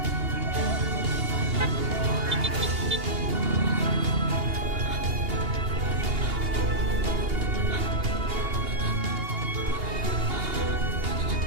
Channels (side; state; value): left; late; 2.8 ms